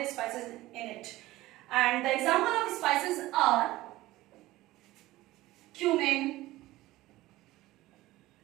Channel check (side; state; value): left; quieter; 17.5 dB